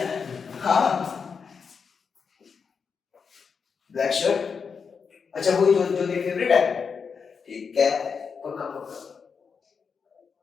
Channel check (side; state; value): right; quieter; 5.9 dB